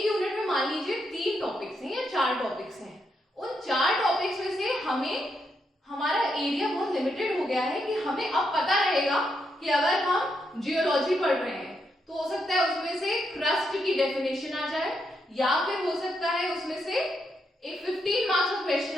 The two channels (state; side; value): normal; both; correlation 0.81